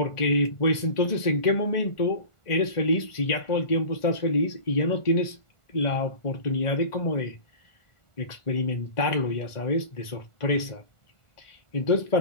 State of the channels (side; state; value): right; late; 1.4 ms